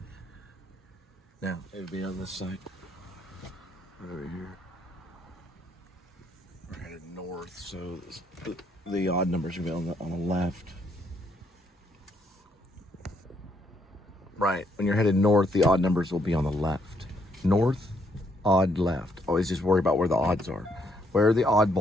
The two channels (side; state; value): both; normal; correlation 0.72